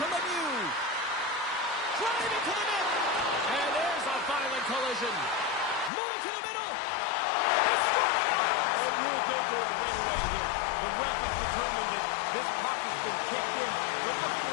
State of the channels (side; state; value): right; drops out; at 5.9 s